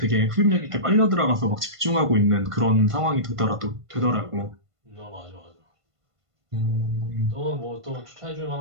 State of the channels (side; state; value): left; late; 1.5 ms